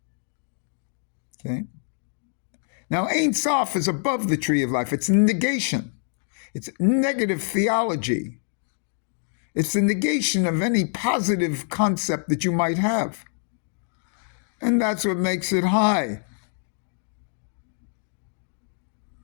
Okay? Now, Ein Sof is above the tree of life. It's negation. It's negative theology. It's the negation of any positive concept that you might have. And that's what makes it high.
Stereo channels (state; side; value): silent; right; 61 dB below the other